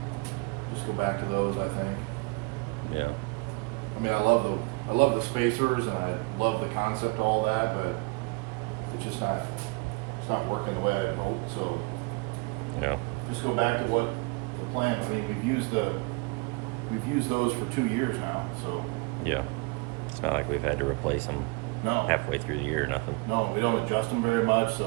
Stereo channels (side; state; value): left; quieter; 28.7 dB